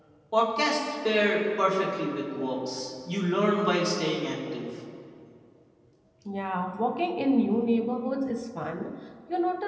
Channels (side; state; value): both; identical; correlation 1.00